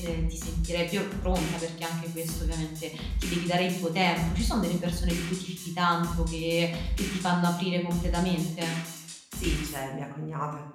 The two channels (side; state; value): both; identical; correlation 1.00